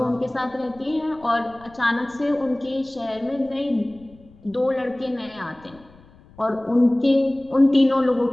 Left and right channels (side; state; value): left; noise; rumble, 26 dB below the sound